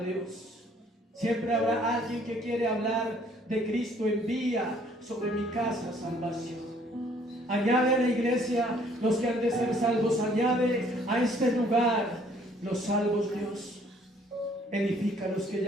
Dios. Siempre habrá alguien que quiere hablar de Cristo. Envía sobre mi casa salvación. Añade a la iglesia los que han de ser salvos. Añade a este lugar los salvos, Dios. Edifica a los que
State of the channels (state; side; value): normal; both; correlation 0.61